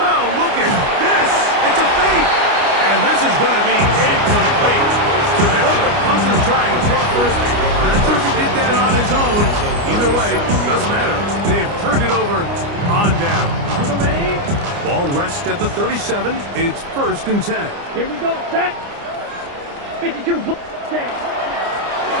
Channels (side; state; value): left; late; 29 ms